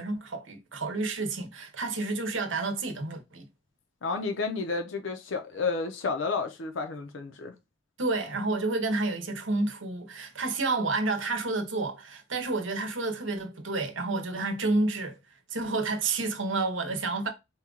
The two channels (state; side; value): normal; both; correlation 0.23